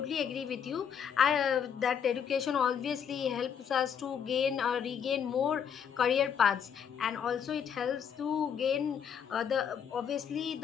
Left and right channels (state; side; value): quieter; right; 7.8 dB